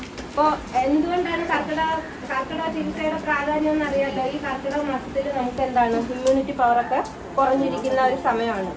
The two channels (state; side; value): identical; both; correlation 1.00